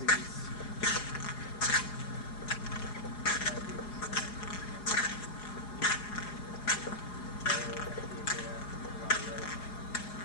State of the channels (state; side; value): late; right; 4.8 ms